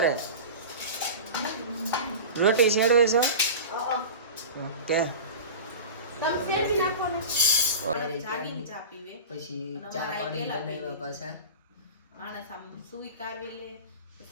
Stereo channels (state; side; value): inverted; both; correlation -0.32